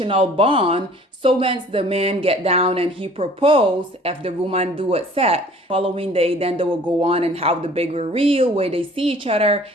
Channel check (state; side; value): normal; both; correlation 0.52